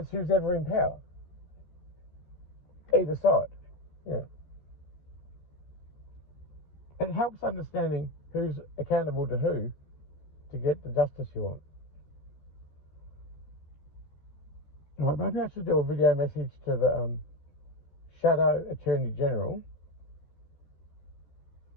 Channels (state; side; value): late; right; 14 ms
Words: who's ever in power. Either side. Yeah. It helps understanding who's accountable to who to get the justice you want. Right, maybe I should do a video message to the Shadow Attorney General.